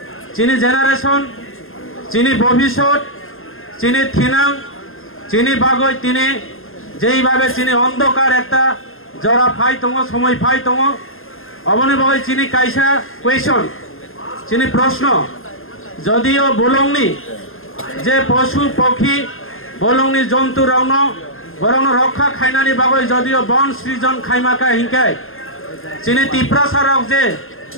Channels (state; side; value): late; right; 0.60 ms